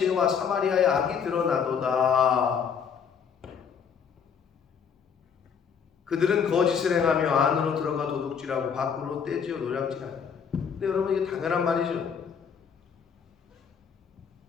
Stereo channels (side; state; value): right; quieter; 6.9 dB